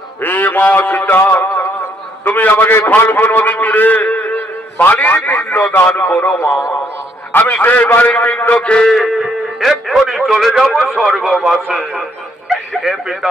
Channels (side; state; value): both; normal; correlation 0.69